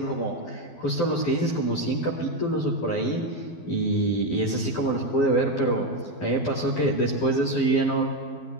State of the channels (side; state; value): right; late; 12 ms